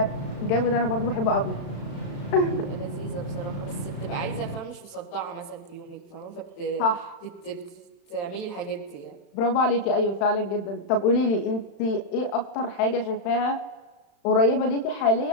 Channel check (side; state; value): right; late; 36 ms